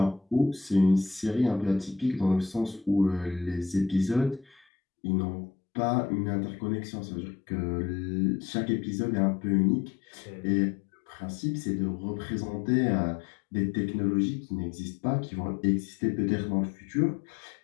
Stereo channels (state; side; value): drops out; right; at 4.7 s